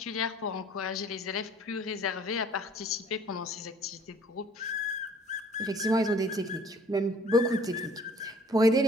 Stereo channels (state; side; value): normal; both; correlation 0.54